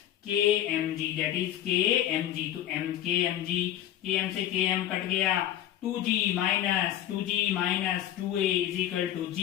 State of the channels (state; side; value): quieter; right; 11.8 dB